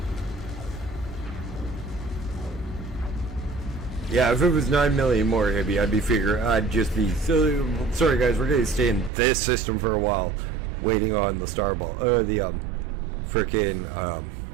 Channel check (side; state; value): left; drops out; at 9.1 s